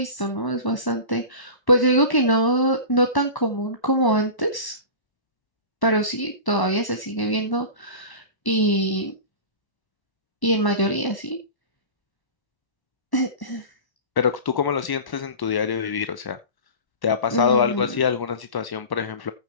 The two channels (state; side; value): late; right; 1.1 ms